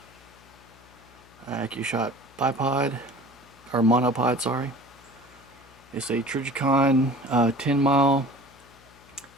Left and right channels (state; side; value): noise; left; hum, 26 dB below the sound